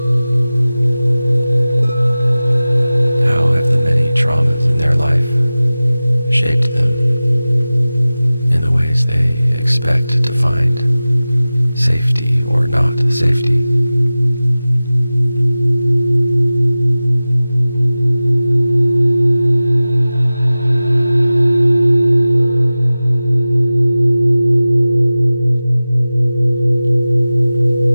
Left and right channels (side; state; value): both; inverted; correlation -0.97